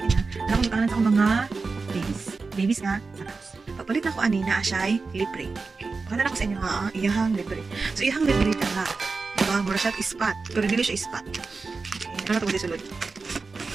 Alam ko kanan sa mga babies. Babies nga, sakas. Papalit na ko ani na siya'y libre. Okay. Pakita na ko sa inyo ha, iyahang libre. So, iyahang libre ka na. Diba? Mura siya ispat. Pero dili siya ispat. Okay. Ano na ito ko sulod.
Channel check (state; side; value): quieter; left; 4.2 dB